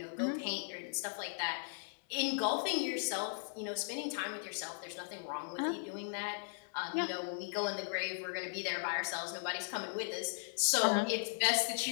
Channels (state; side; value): silent; right; 53 dB below the other